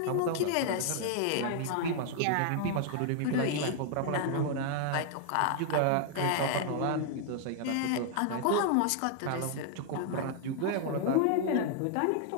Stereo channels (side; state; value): both; different; correlation 0.00